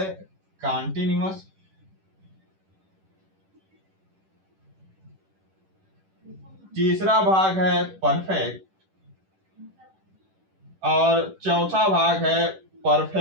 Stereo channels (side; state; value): left; late; 10 ms